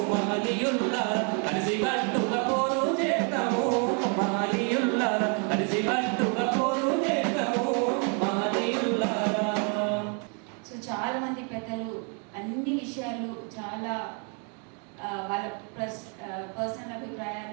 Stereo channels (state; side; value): quieter; left; 37.7 dB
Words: మహనీయుల్లా కలిసి కట్టుగా పోరు చేస్తాము మహనీయుల్లా కలిసి కట్టుగా పోరు చేస్తాము మహనీయుల్లా. సో చాలా మంది పెద్దలు అన్ని విషయాలు చాలా వాళ్ళ పర్సనల్